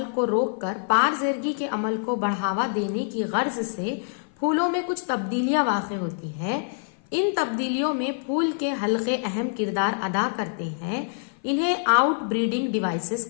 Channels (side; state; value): right; silent; 55 dB below the other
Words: को रोककर पारजेरगी के अमल को बढ़ावा देने की गर्ज से फूलों में कुछ तब्दीलियां वाक़ होती है। इन तब्दीलियों में फूल के हल्के अहम किरदार अदा करते हैं। इन्हें आउटब्रीडिंग डिवाइसेस